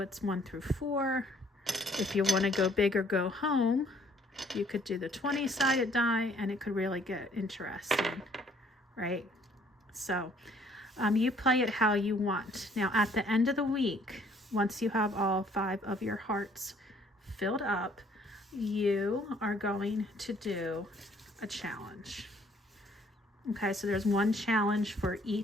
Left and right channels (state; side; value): normal; both; correlation 0.61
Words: it's 1 through 4. If you want to go big or go home, you could do the 20-sided die, and it could really get interesting, right? So you play it how you want. Now, at the end of the week, once you have all 5 of your hearts filled up, you are going to do a challenge. Okay, so there's one challenge for